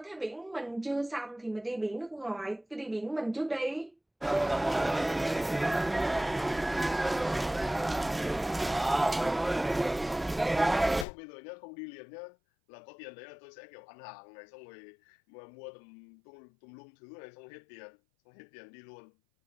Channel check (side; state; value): right; drops out; at 11.1 s